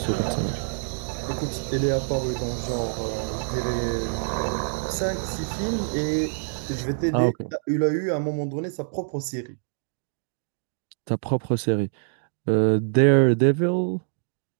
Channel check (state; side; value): silent; left; digital silence